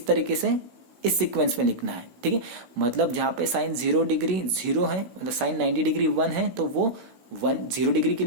तरीके से इस सीक्वेंस में लिखना है। ठीक है, मतलब जहां पे साइन 0 डिग्री 0 है, मतलब साइन 90 डिग्री 1 है, तो वो 0 डिग्री के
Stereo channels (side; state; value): left; late; 16 ms